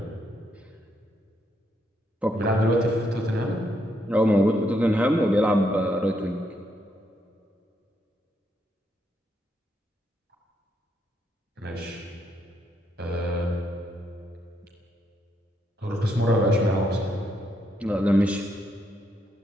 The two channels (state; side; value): normal; both; correlation 0.77